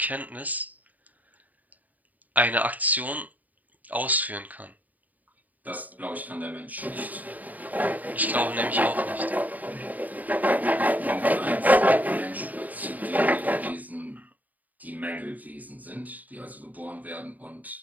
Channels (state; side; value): late; left; 0.078 ms